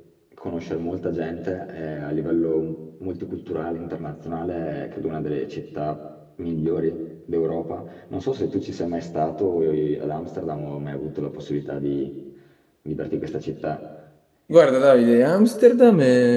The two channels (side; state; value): both; identical; correlation 1.00